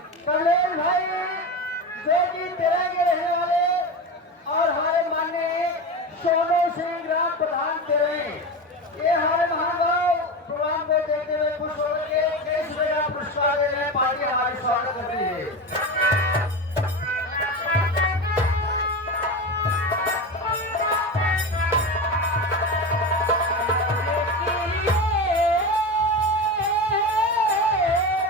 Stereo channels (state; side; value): normal; both; correlation 0.23